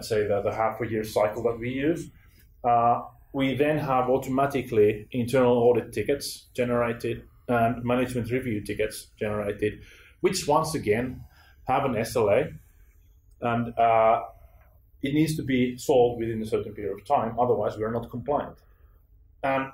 say the half-a-year cycle that we use, we then have automatically internal audit tickets generated and management review tickets generated, which once again have an SLA, and it needs to be solved within a certain period of time, otherwise we're not compliant. And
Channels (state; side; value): identical; both; correlation 1.00